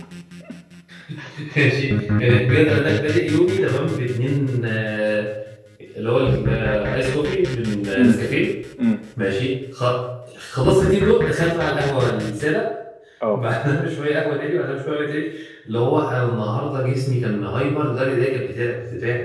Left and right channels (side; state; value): both; identical; correlation 1.00